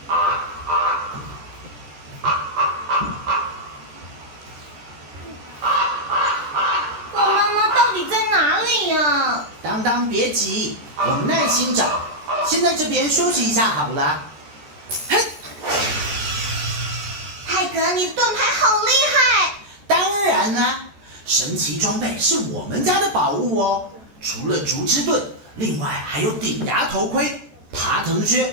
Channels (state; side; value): late; left; 14 ms